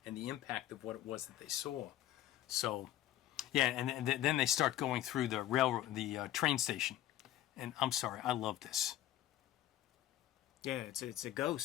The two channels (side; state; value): right; quieter; 13.2 dB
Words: and the impact of what it was that they saw. So, yeah, and then they start going through the train station. And I'm sorry, I love this. Yeah, it's a